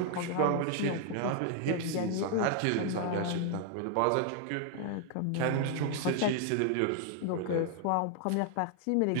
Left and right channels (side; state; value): both; different; correlation 0.00